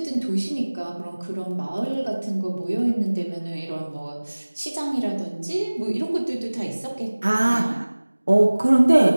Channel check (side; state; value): both; inverted; correlation -1.00